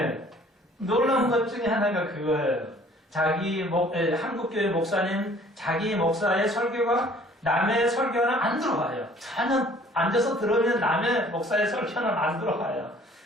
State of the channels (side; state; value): both; normal; correlation 0.55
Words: 놀라운 것 중에 하나가 그거예요. 한국교회 목사님, 자기 목사의 설교가 남의 설교는 안 들어와요. 전혀 앉아서 들으면 남의 목사의 설교는 안 들어와요.